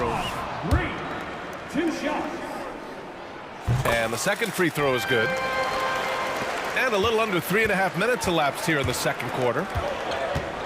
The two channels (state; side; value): identical; both; correlation 1.00